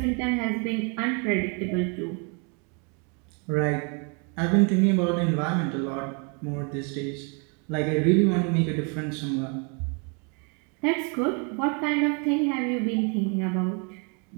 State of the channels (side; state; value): left; quieter; 35.9 dB